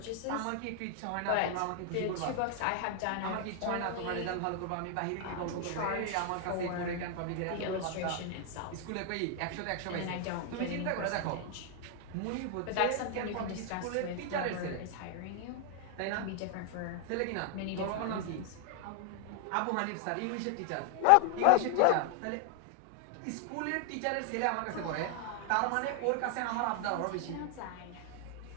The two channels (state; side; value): different; both; correlation 0.00